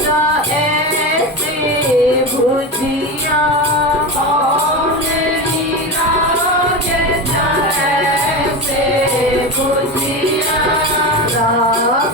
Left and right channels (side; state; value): both; normal; correlation 0.22